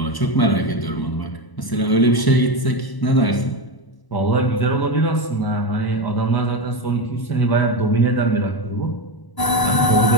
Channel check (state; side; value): late; right; 1.0 ms